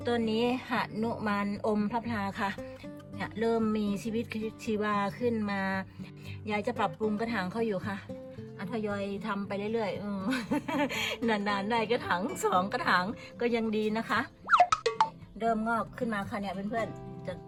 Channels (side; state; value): both; identical; correlation 1.00